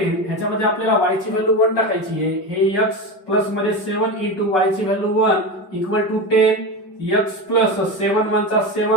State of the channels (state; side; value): late; right; 5.3 ms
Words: ह्याच्यामध्ये आपल्याला y ची व्हॅल्यू 1 टाकायची आहे. हे x प्लस मध्ये 7 इंटू y ची value 1 equal to 10. x plus 7 1 चा